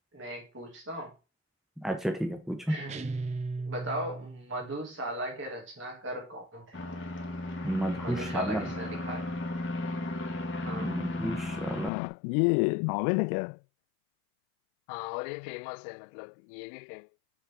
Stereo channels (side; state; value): right; drops out; at 11.9 s